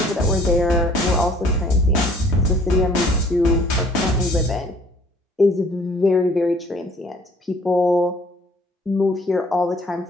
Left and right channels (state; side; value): normal; both; correlation 0.56